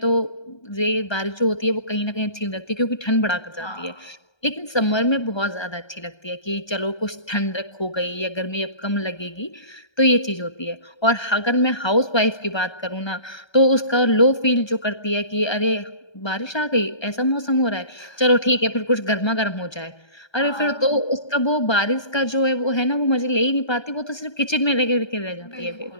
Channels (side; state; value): right; late; 1.3 ms